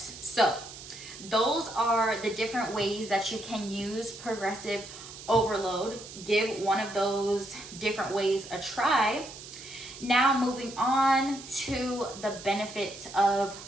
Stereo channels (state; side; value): noise; right; hiss, 14 dB below the sound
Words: So those are the different ways that you can use progressive overload. Give one of those different ways a try. Now moving on to the benefits of